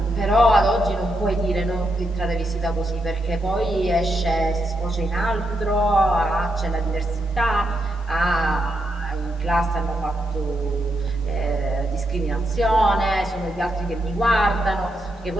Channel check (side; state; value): both; normal; correlation 0.82